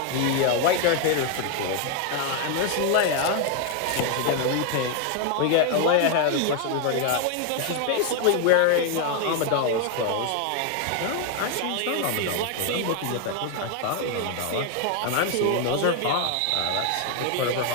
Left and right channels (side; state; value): both; different; correlation 0.01